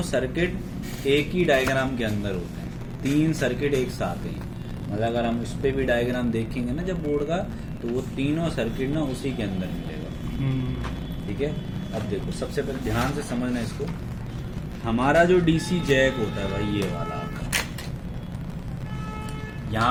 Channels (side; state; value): both; identical; correlation 1.00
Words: सर्किट एक ही डायग्राम के अंदर होते हैं। 3 सर्किट एक साथ हैं। मतलब अगर हम उस पर भी डायग्राम देखेंगे ना जब बोर्ड का, तो वो तीनों सर्किट ना उसी के अंदर मिलेगा। ठीक है, अब देखो सबसे पहले ध्यान से समझना इसको। हमारा जो डीसी जैक होता है भाई, ये वाला आपका,